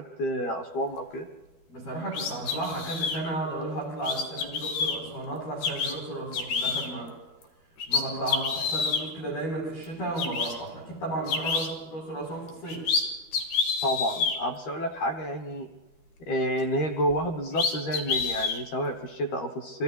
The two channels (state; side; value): late; right; 12 ms